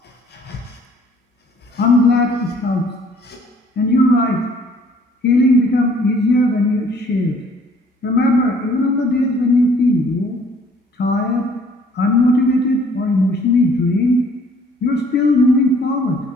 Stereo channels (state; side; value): normal; both; correlation 0.59